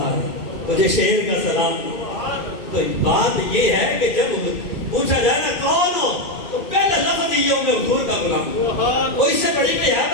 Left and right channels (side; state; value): right; late; 2.4 ms